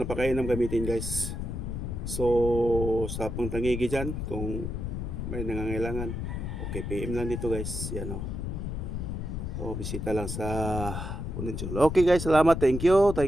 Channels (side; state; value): left; noise; rumble, 4 dB below the sound